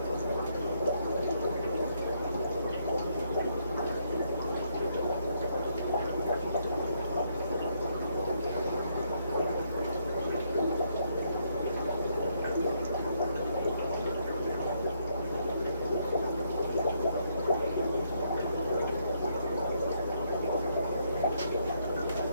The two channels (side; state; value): both; inverted; correlation -0.74